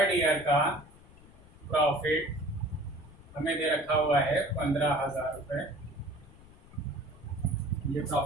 का प्रॉफिट हमें दे रखा हुआ है 15,000 रुपये। ये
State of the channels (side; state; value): left; noise; rumble, 23 dB below the sound